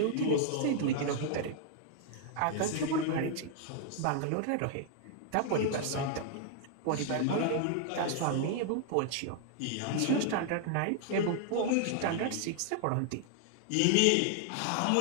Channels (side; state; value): both; different; correlation 0.00